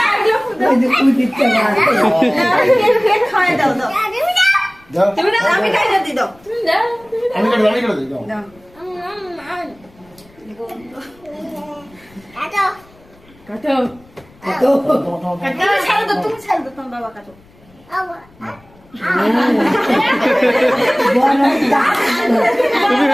আমি খাই দিই দাও। আমি করে দিই দাও। কাটো ছাড়ো তো, তুমি ছাড়ো তো, তোমার বাবা কাটো।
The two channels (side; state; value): left; noise; rumble, 28 dB below the sound